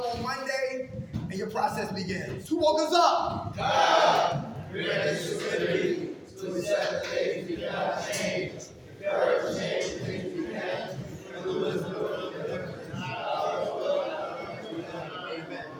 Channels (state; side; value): identical; both; correlation 1.00